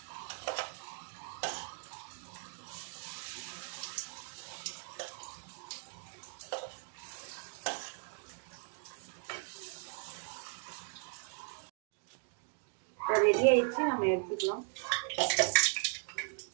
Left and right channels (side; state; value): left; silent; 53 dB below the other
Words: ரெடி ஆயிடுச்சு, நம்ம எடுத்துக்கலாம்.